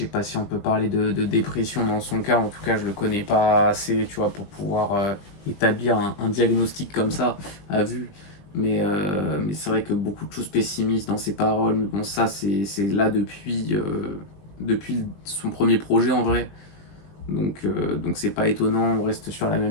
sais pas si on peut parler de dépression dans son cas, en tout cas je le connais pas assez, tu vois, pour pouvoir établir un diagnostic comme ça à vue. Mais c'est vrai que beaucoup de choses pessimistes dans ses paroles, mais bon ça c'est là depuis son premier projet en vrai. Donc c'est pas étonnant, on reste sur la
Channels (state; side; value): late; right; 20 ms